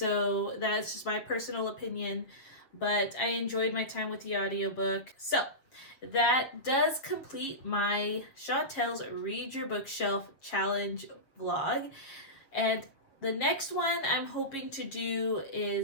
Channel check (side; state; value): right; late; 7.5 ms